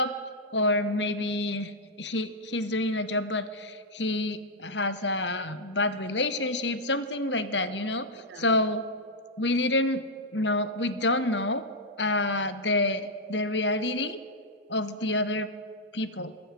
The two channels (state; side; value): normal; both; correlation -0.06